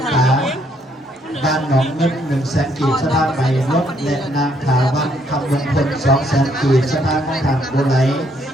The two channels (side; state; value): both; normal; correlation 0.70